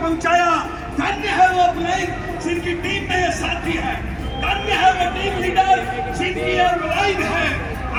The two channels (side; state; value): both; identical; correlation 1.00